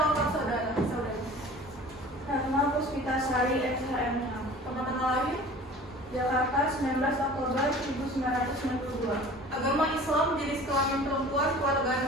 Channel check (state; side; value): normal; both; correlation 0.44